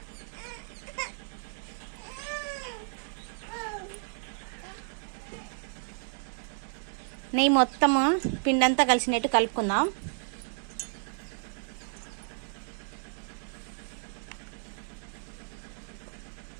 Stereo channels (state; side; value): silent; left; 56 dB below the other